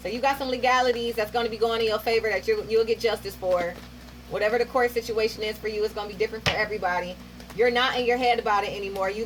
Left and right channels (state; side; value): identical; both; correlation 1.00